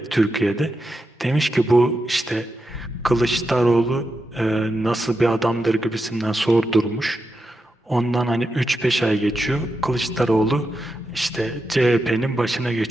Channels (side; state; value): both; normal; correlation 0.87